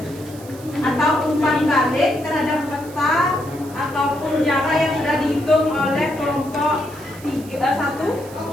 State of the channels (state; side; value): noise; right; hiss, 20 dB below the sound